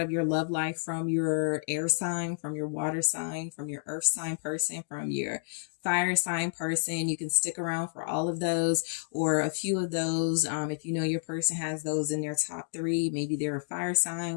of your love life from your air sign, from your water sign, from your earth sign person, from your fire sign person. You can stick around for all of those or a few of those. If you know your person has those in their top 3, maybe they're a fire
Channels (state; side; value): silent; right; digital silence